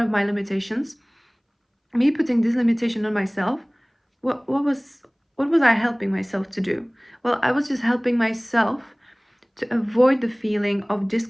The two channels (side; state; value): both; identical; correlation 1.00